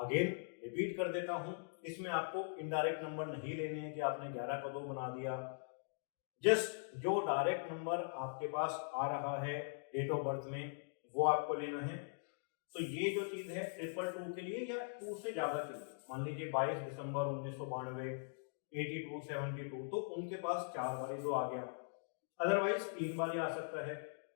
रिपीट कर देता हूं, इसमें आपको इनडायरेक्ट नंबर नहीं लेने हैं कि आपने 11 का 2 बना दिया। जस्ट जो डायरेक्ट नंबर आपके पास आ रहा है डेट ऑफ बर्थ में वो आपको लेना है। तो ये जो चीज है 222 के लिए या 2 से ज्यादा के लिए, मान लीजिए 22 दिसंबर 1992, 82, 72, तो उनके पास 4 बारी 2 आ गया, अदरवाइज 3 बारी आ सकता है।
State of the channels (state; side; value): silent; right; digital silence